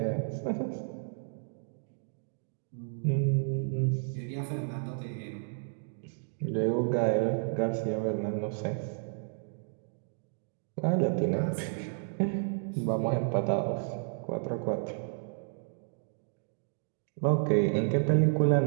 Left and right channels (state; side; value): silent; left; digital silence